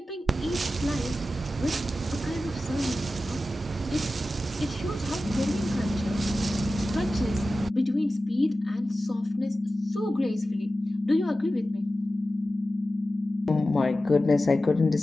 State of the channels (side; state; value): both; normal; correlation 0.94